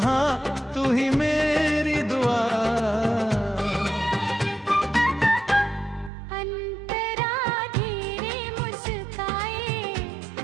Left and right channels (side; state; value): left; drops out; at 6.1 s